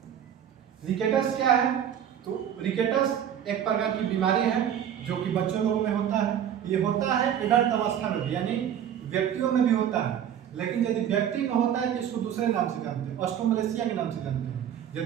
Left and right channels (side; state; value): left; quieter; 9.5 dB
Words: रिकेटस क्या है? तो रिकेटस एक प्रकार की बीमारी है जो कि बच्चों लोगों में होता है। ये होता है एडल्ट अवस्था में भी, यानी व्यक्तियों में भी होता है, लेकिन यदि व्यक्ति में होता है तो इसको दूसरे नाम से जानते हैं, ऑस्ट्रोमलेशिया के नाम से जानते हैं।